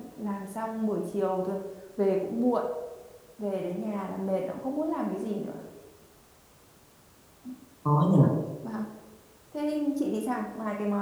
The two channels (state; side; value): identical; both; correlation 1.00